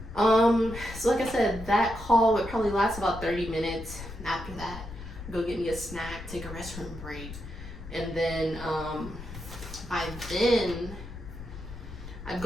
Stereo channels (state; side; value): noise; left; rumble, 12 dB below the sound